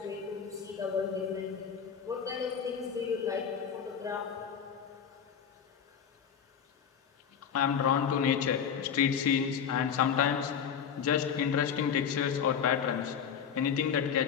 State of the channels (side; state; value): right; quieter; 7.5 dB